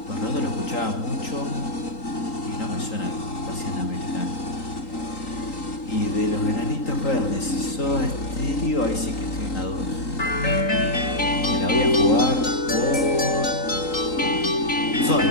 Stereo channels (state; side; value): late; right; 3.8 ms